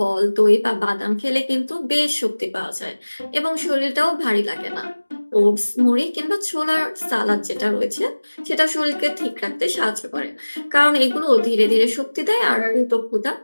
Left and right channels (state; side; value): inverted; both; correlation -1.00